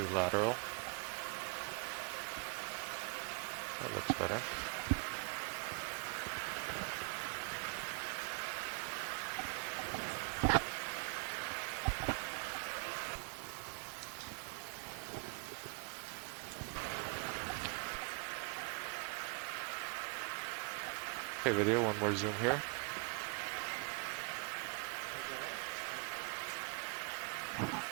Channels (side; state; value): left; quieter; 36.3 dB